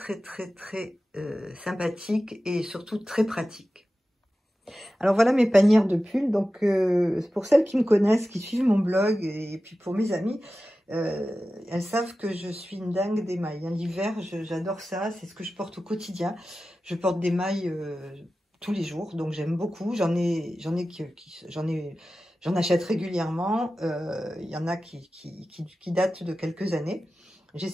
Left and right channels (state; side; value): normal; both; correlation 0.94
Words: sympathiques et surtout très pratiques. Alors voilà mes panières de pulls. Donc pour celles qui me connaissent, qui suivent mon blog et puis pour mes amis, elles savent que je suis une dingue des mailles. Hein. L'hiver, j'adore ça, c'est ce que je porte au quotidien. Je porte des mailles tous les jours, donc j'aime beaucoup. J'en achète régulièrement. Il y en a qui datent de quelques années.